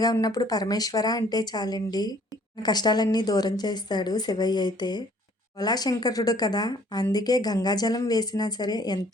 ఉన్నప్పుడు పరమేశ్వర అంటే చాలండి. మన కష్టాలన్నీ దూరం చేస్తాడు శివయ్య అయితే. భోళాశంకరుడు కదా! అందుకే గంగాజలం వేసినా సరే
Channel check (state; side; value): normal; both; correlation 0.58